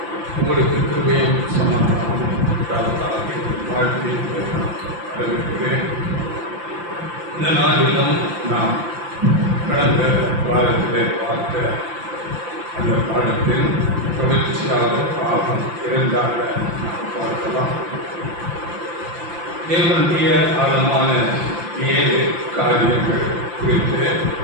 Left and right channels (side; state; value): left; late; 5.8 ms